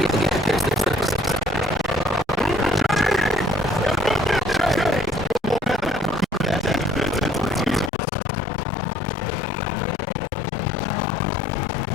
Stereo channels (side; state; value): right; drops out; at 7.9 s